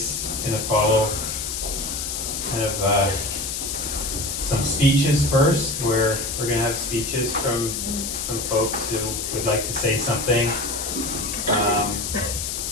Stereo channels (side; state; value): left; noise; hiss, 3 dB below the sound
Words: going to follow kind of some speeches first, where we're going to have speeches from some folks who would like to say something. And